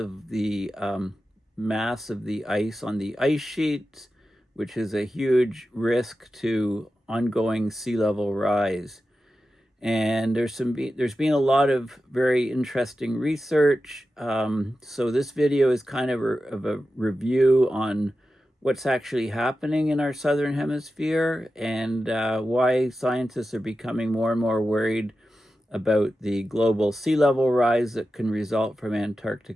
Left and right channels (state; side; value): normal; both; correlation 0.92